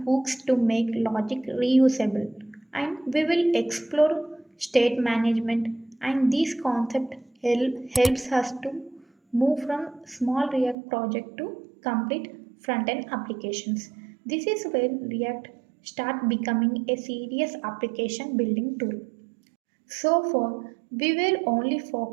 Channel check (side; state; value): left; drops out; at 10.8 s